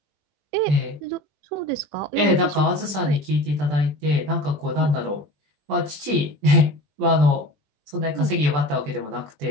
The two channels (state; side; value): late; left; 20 ms